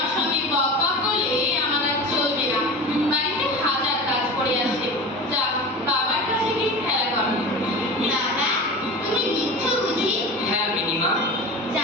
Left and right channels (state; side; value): normal; both; correlation 0.32